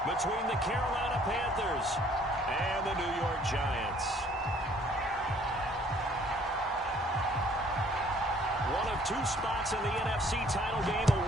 between the Carolina Panthers and the New York Giants. One of two spots in the NFC title game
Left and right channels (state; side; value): normal; both; correlation 0.59